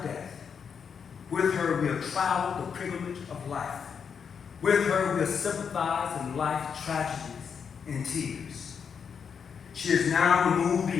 death. With her, we have traveled the pilgrimage of life. With her, we have sympathized in life's tragedies and tears. She is now removed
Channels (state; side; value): quieter; right; 6.7 dB